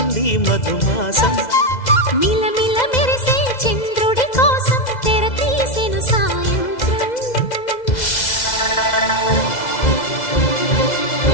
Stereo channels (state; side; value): late; right; 2.0 ms